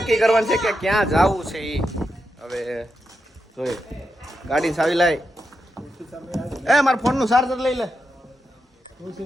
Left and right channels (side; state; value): both; normal; correlation 0.86